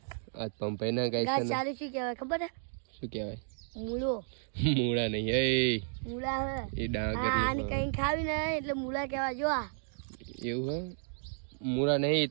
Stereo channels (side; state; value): left; silent; digital silence